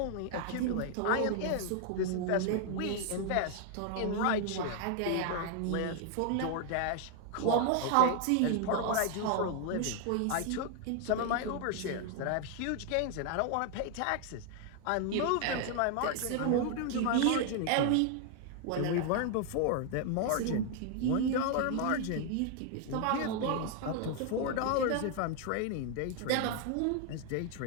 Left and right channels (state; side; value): different; both; correlation 0.00